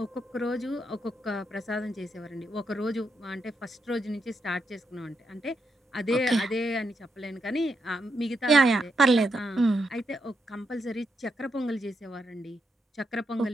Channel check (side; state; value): both; normal; correlation 0.82